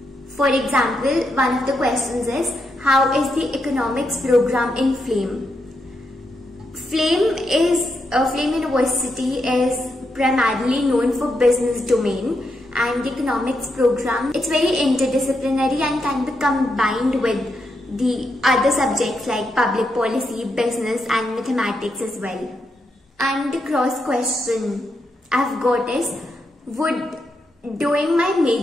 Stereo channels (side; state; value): both; normal; correlation 0.82